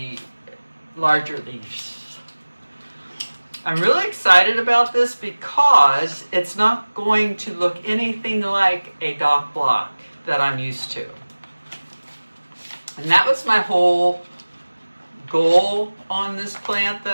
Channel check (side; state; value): both; inverted; correlation -1.00